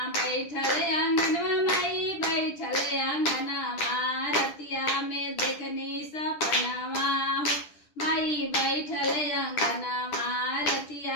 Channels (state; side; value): late; right; 10 ms